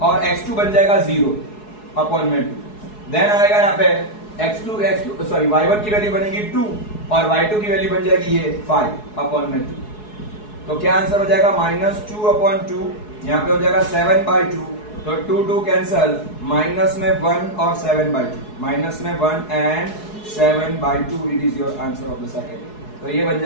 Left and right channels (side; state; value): right; late; 4.7 ms